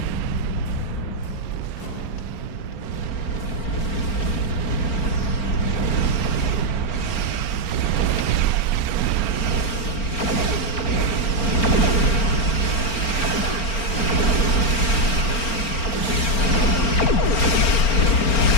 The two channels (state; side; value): late; right; 4.4 ms